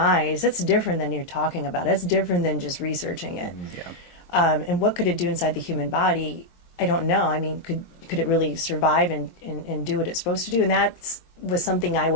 that's different than you're talking about. It's different than just researching it. Yeah. And what could it do inside the human body? I don't know. I mean, could it really survive and do what it's supposed to do? And that was something I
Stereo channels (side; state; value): right; late; 23 ms